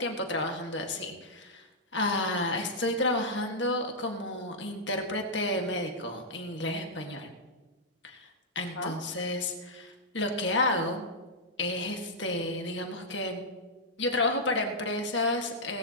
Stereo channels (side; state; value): both; normal; correlation -0.08